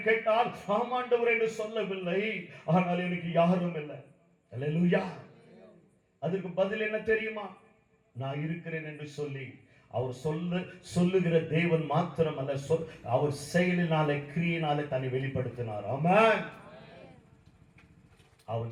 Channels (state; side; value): identical; both; correlation 1.00